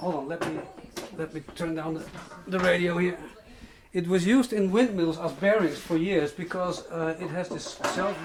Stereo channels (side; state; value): both; identical; correlation 1.00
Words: on, let me turn down the radio here. It was used in windmills as bearings for years because it has this